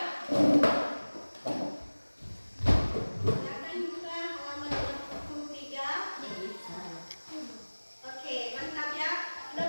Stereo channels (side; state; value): both; inverted; correlation -1.00